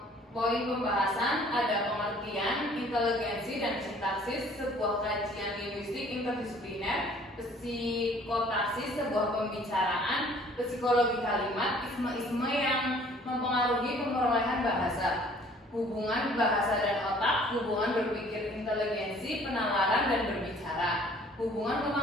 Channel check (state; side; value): normal; both; correlation 0.55